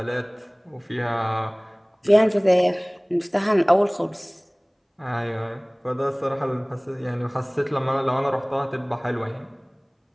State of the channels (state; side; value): identical; both; correlation 1.00